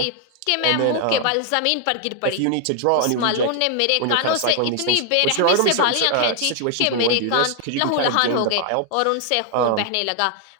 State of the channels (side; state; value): both; different; correlation 0.00